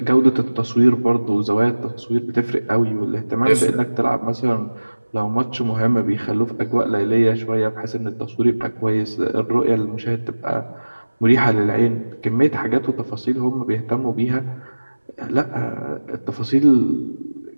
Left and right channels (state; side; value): inverted; both; correlation -1.00